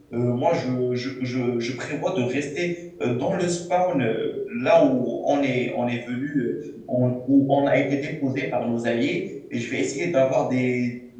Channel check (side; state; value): both; identical; correlation 1.00